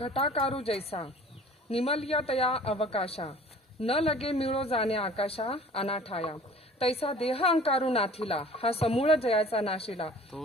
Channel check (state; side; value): normal; both; correlation 0.47